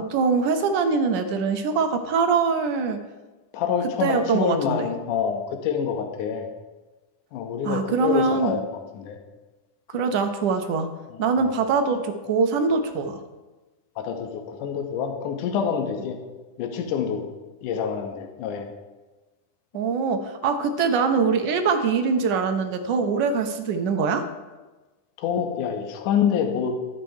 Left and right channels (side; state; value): right; late; 10 ms